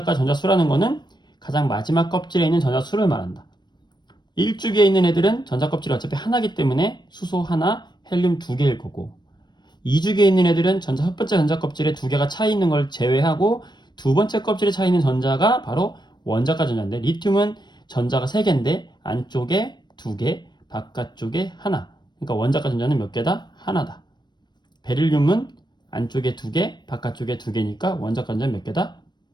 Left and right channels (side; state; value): right; late; 0.21 ms